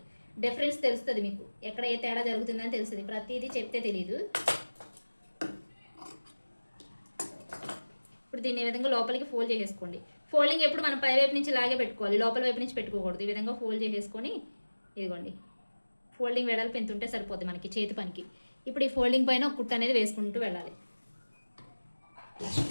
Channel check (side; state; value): both; inverted; correlation -1.00